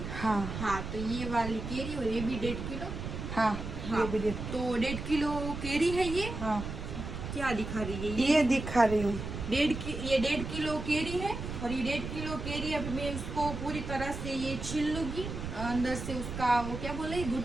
हाँ हाँ। तो ये वाली केरी, और ये भी 1.5 किलो। हाँ, हाँ ये भी देख। तो 1.5 किलो केरी है ये। हाँ क्या दिखा रही है ये दिखा रही हूँ। ये 1.5 किलो केरी है, और ये 1.5 किलो केरी अब मैं उसको पूरी तरह से ये छील लूंगी, अंदर से उसका वो क्या बोले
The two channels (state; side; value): noise; right; rumble, 7 dB below the sound